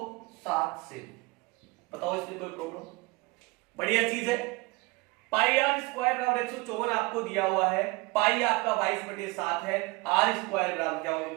7 से। बताओ इसमें कोई प्रॉब्लम? बढ़िया चीज है। पाई आर स्क्वायर बराबर 154 आपको दिया हुआ है, पाई आपका 22/7 है, आर स्क्वायर बराबर क्या होगा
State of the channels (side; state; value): left; quieter; 24.2 dB